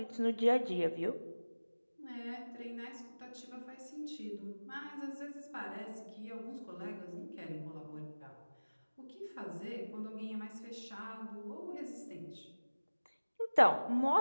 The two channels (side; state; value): both; inverted; correlation -1.00